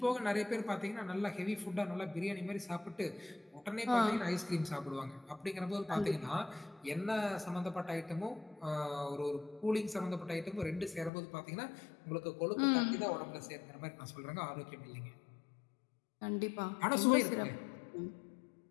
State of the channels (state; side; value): drops out; right; at 11.1 s